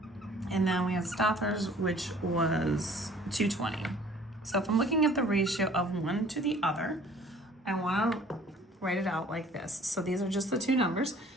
and then we have Stothers, which was 220. So if I'm looking at the ratio of one to the other, I wanna write it out like this. So these are just the 2 numbers.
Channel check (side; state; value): both; normal; correlation 0.53